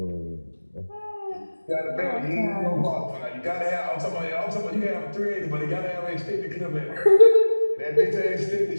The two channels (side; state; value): both; inverted; correlation -1.00